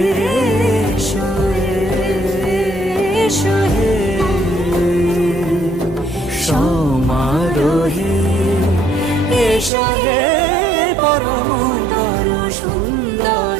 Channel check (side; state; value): left; drops out; at 9.7 s